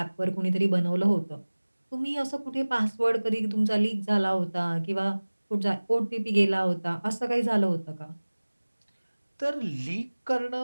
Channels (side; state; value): both; inverted; correlation -1.00